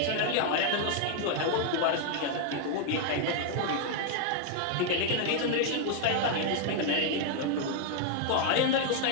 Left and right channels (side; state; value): both; different; correlation 0.00